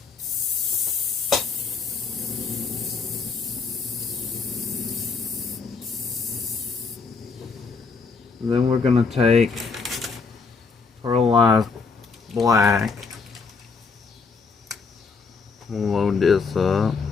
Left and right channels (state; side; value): quieter; right; 4.7 dB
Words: And then we're gonna take pearlized black. We'll load this up,